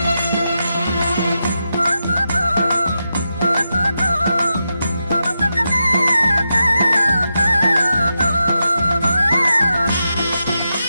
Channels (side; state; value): both; inverted; correlation -0.87